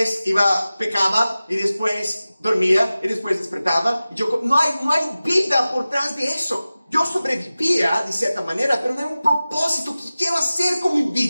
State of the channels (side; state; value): both; inverted; correlation -0.96